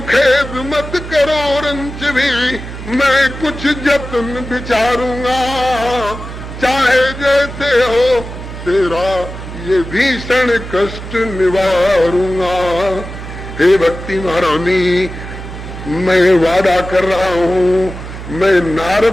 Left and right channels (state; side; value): noise; right; hum, 10 dB below the sound